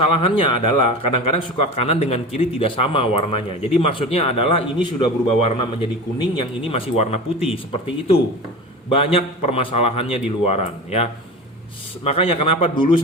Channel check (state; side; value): normal; both; correlation 0.31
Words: adalah kadang-kadang suka kanan dengan kiri tidak sama warnanya. Jadi maksudnya adalah ini sudah berubah warna menjadi kuning, yang ini masih warna putih, seperti itu Banyak permasalahannya di luaran ya. Makanya kenapa dulu